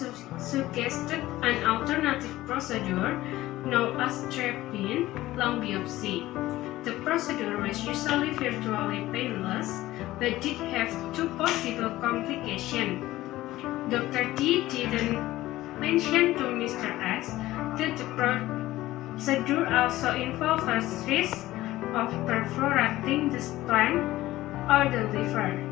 suggested an alternative procedure known as drop-in lung biopsy. The procedure was usually virtually painless, but did have two possible complications. Dr. D didn't mention to Mr. S that the procedure also involves risk of perforating the spleen or the liver.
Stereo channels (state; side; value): quieter; right; 16.4 dB